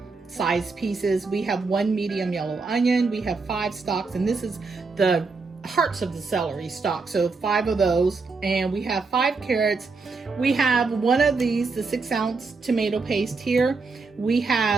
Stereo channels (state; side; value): quieter; left; 4.2 dB